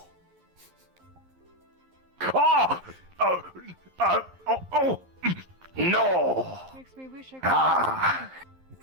No. Makes me wish I could.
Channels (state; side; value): late; left; 11 ms